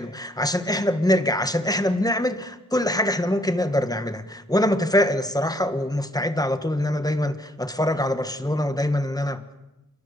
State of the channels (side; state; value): both; normal; correlation 0.67